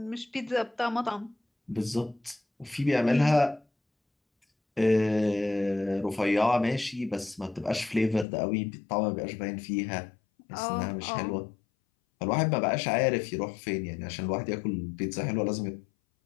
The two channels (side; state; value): right; drops out; at 8.2 s